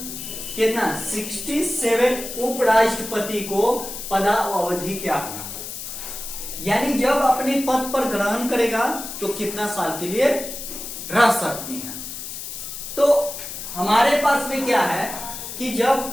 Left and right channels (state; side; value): noise; left; hiss, 8 dB below the sound